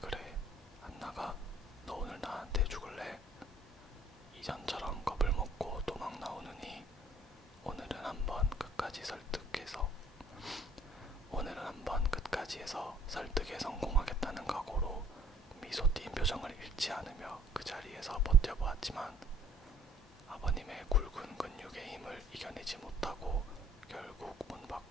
안 나가? 너 오늘 나한테 죽을래? 이전처럼 겁을 먹고 도망 나오느니 오늘은 한번 끝까지 해서 설득에 성공하겠다는 각오로 미소 띈 표정을 잃지 않으며 그 자리에서 버텨보았지만 아버님의 굵은 근육의 힘을 이겨내지 못하고 결국 문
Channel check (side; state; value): both; normal; correlation 0.57